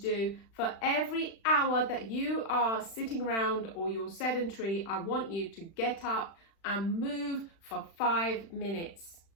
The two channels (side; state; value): right; late; 36 ms